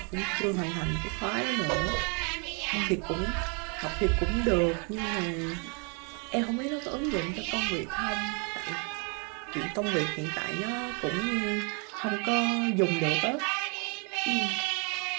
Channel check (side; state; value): left; quieter; 36.4 dB